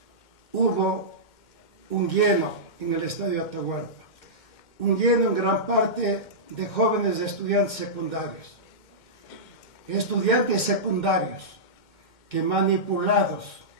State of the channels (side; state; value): right; late; 2.1 ms